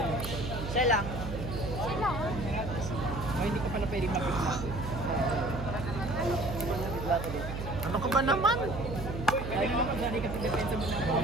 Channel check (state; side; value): noise; right; hum, 6 dB below the sound